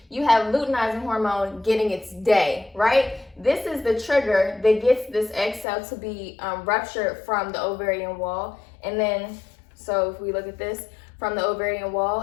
you have luteinizing hormone getting its day, right? This is the trigger that gets this egg cell to be ruptured from the ovarian wall. And then, so if we look at this, from the ovarian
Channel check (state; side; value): drops out; right; at 5.7 s